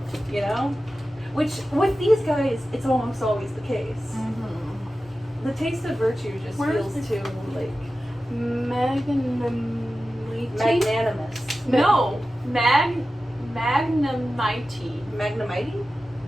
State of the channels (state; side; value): normal; both; correlation 0.94